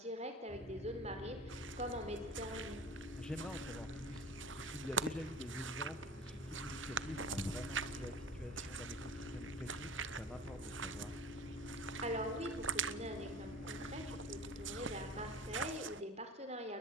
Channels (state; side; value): normal; both; correlation 0.38